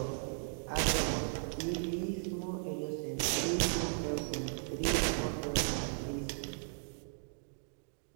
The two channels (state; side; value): silent; left; digital silence